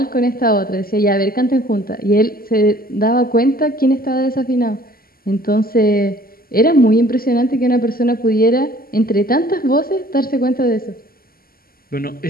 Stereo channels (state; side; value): late; right; 0.42 ms